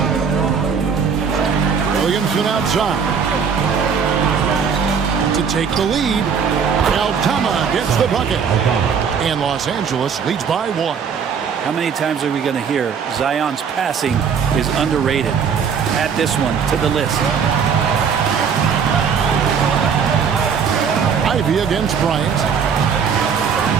Williamson outside. To take the lead, Aldama gets the bucket. And Los Angeles leads by 1. How many times are we going to hear Zion's passing is underrated? Add this one to the list. Ivy against Bryant.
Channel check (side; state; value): left; quieter; 6.6 dB